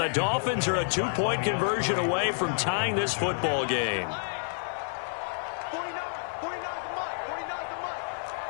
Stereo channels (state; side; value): silent; right; 58 dB below the other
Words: Dolphins are a 2-point conversion away from tying this football game. 49 the month. 49 the month.